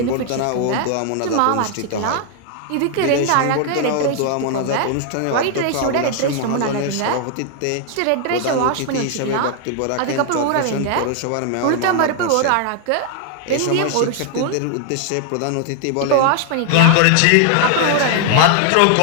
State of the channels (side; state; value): both; different; correlation 0.00